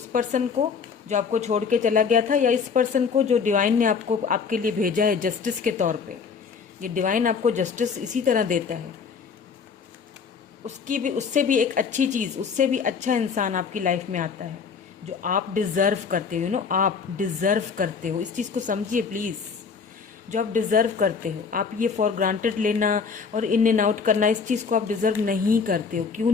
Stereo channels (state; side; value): quieter; right; 5.7 dB